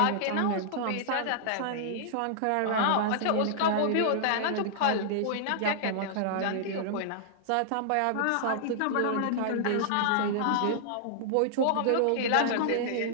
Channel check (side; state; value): both; different; correlation -0.01